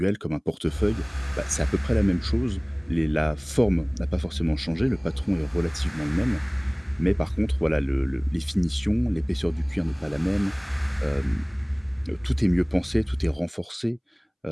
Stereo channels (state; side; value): identical; both; correlation 1.00